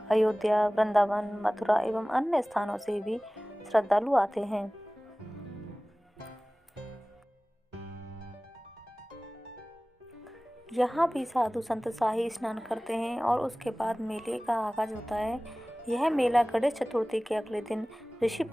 अयोध्या, वृंदावन, मथुरा एवं अन्य स्थानों से भी श्रद्धालु आते हैं। यहाँ भी साधु संत शाही स्नान करते हैं और उसके बाद मेले का आगाज होता है। यह मेला गणेश चतुर्थी के अगले दिन ऋषि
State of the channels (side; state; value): both; normal; correlation 0.98